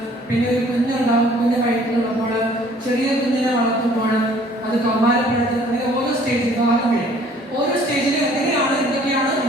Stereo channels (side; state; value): both; normal; correlation 0.56